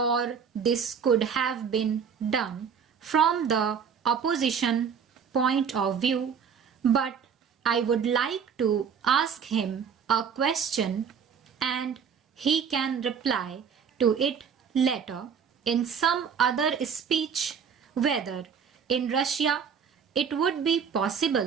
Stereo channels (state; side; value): quieter; left; 6.9 dB